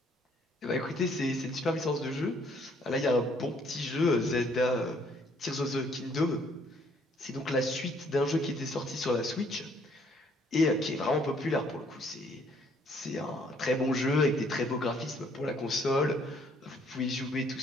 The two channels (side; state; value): both; normal; correlation 0.64